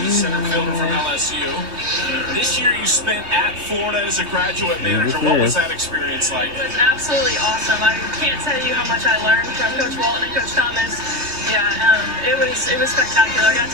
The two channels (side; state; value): left; late; 3.1 ms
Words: center fielder from LSU. This year you spent at Florida as a graduate manager. What was that experience like? It was absolutely awesome. I can't tell you how much I learned from Coach Walton and Coach Thomas. Yeah, it was spectacular. I got